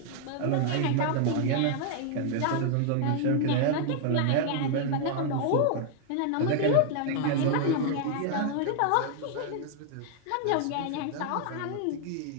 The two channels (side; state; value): both; different; correlation 0.00